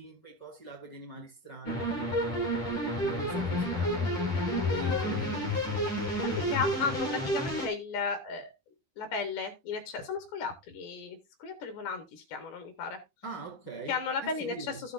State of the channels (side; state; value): right; late; 10 ms